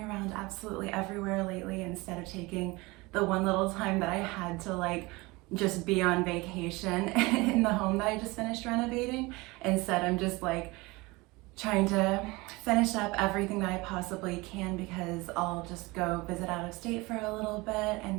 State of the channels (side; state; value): left; quieter; 23.3 dB